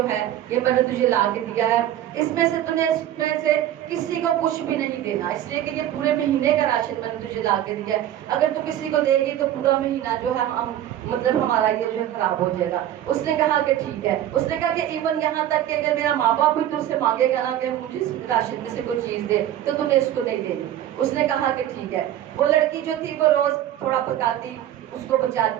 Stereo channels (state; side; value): quieter; left; 12.0 dB